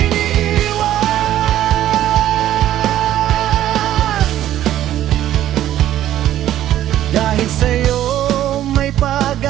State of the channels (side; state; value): left; quieter; 12.5 dB